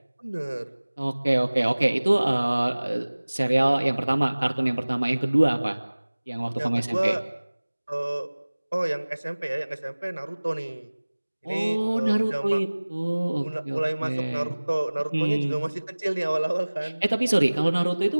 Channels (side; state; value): both; inverted; correlation -1.00